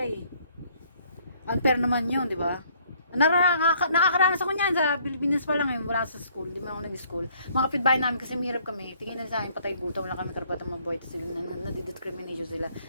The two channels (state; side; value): inverted; both; correlation -0.63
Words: eh. Unfair naman yun, di ba? Nakakaranas ako niyan sa Pilipinas pa lang eh, wala sa school, di man ako nag-school. Mga kapitbahay namin kasi mahirap kami, tingin na sa akin, patay buta, wala kami karapatang mabuhay, tapos nadidiscrimination sila.